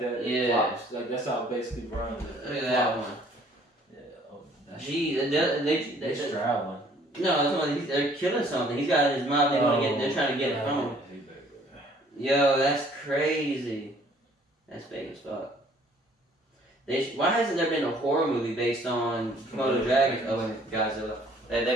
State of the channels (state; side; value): normal; both; correlation 0.58